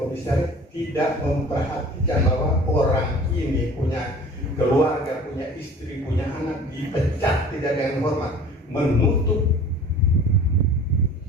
komisaris tidak memperhatikan bahwa orang ini punya keluarga, punya istri, punya anak, dipecat tidak ada yang hormat, menutup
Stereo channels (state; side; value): normal; both; correlation 0.44